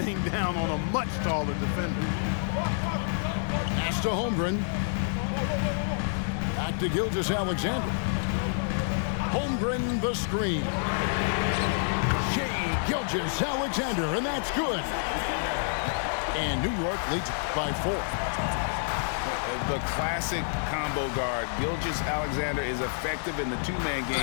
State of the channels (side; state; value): right; silent; digital silence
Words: down on a much taller defender. Pass to Holmgren. Back to Gilgeous-Alexander. Holmgren the screen. Shai Gilgeous-Alexander, and that's good. And New York leads by 4. The classic combo guard. Gilgeous-Alexander is effective in the two-man